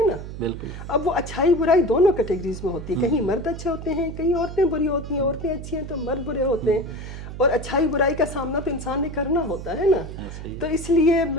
نا. بالکل. اب وہ اچھائی برائی دونوں کیٹیگریز میں ہوتی ہے. کہیں مرد اچھے ہوتے ہیں, کہیں عورتیں بری ہوتی ہیں. عورتیں اچھی ہیں تو مرد برے ہوتے ہیں. اور اچھائی برائی کا سامنا تو انسان نے کرنا ہوتا ہے نا. تو اس لیے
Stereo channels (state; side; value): noise; right; hum, 9 dB below the sound